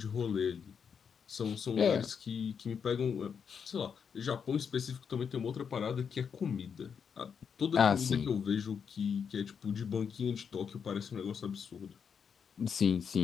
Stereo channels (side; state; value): right; quieter; 6.8 dB